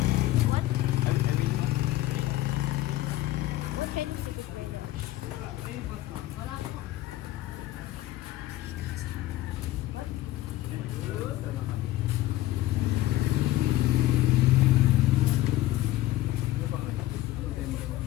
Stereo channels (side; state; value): right; quieter; 15.7 dB